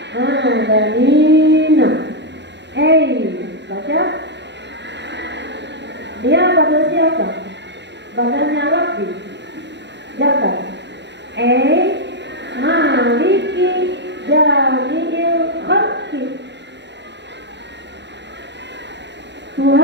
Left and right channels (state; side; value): late; left; 0.51 ms